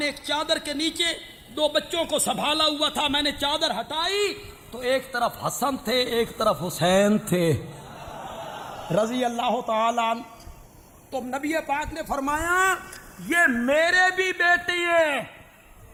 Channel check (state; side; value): identical; both; correlation 1.00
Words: ایک چادر کے نیچے 2 بچوں کو سنبھالا ہوا تھا، میں نے چادر ہٹائی تو ایک طرف حسن تھے ایک طرف حسین تھے رضی اللہ تعالیٰ عنہ۔ تو نبی پاک نے فرمایا یہ میرے بھی بیٹے ہیں